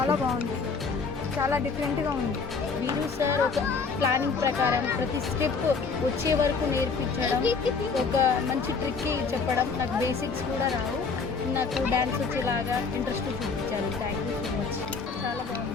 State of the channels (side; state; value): right; quieter; 4.9 dB